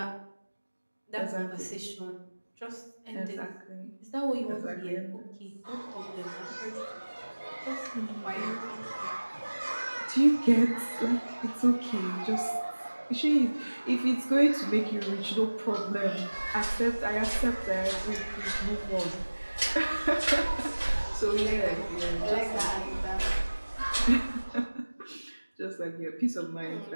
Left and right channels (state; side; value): inverted; both; correlation -1.00